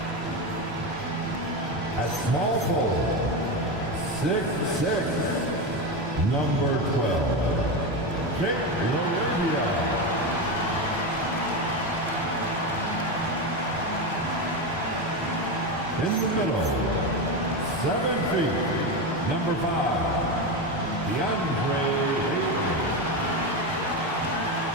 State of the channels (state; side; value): normal; both; correlation 0.16